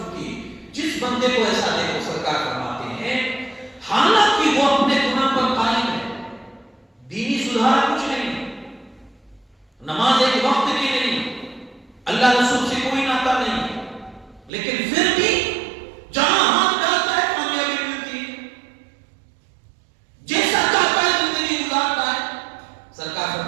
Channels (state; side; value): drops out; left; at 14.5 s